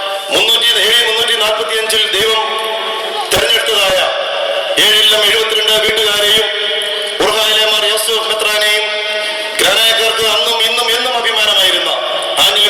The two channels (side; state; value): both; identical; correlation 1.00